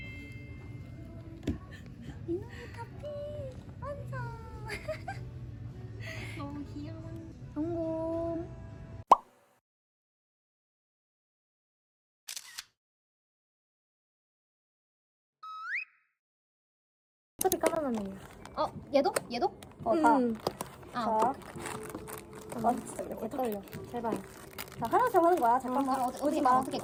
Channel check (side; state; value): both; identical; correlation 1.00